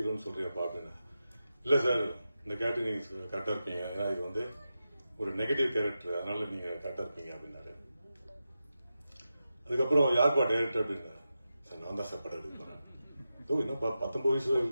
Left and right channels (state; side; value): inverted; both; correlation -0.90